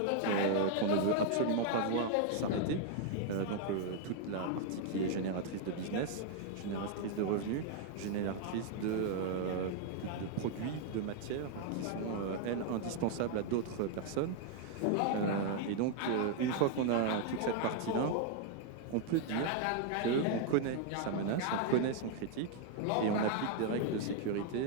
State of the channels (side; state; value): both; different; correlation 0.00